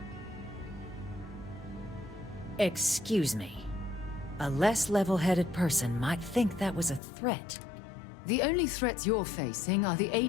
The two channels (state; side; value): drops out; right; at 7.0 s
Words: Excuse me. A less level-headed person might think that was a threat. The only threats you're facing are the